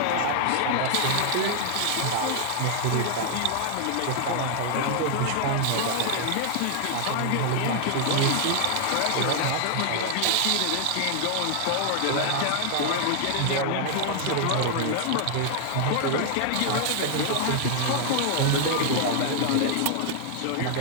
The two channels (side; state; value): both; different; correlation 0.00